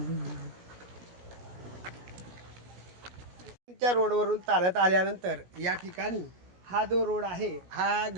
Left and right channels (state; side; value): late; left; 16 ms